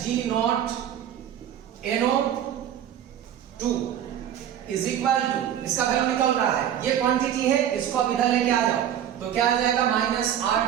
NO2 is equal to, इसका वैल्यू निकल रहा है, ये क्वांटिटी है, इसको अब इधर लेके आ जाओ तो क्या आ जाएगा,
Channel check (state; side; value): quieter; left; 10.2 dB